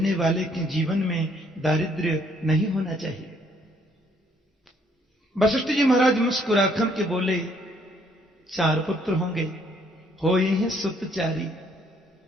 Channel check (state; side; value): normal; both; correlation 0.66